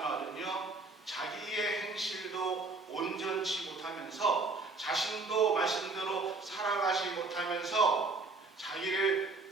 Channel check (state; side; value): quieter; left; 3.7 dB